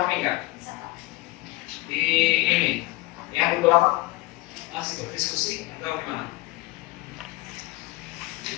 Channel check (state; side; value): quieter; right; 20.5 dB